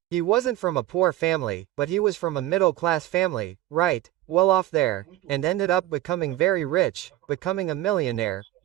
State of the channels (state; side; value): quieter; left; 14.9 dB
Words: He wasn't from a poor family, but he was from a middle class family, right, well off there, and ended up becoming very rich, becoming a millionaire,